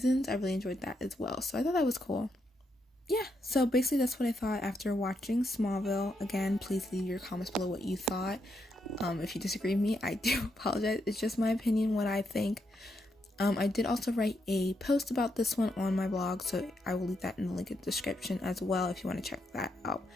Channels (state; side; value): normal; both; correlation 0.80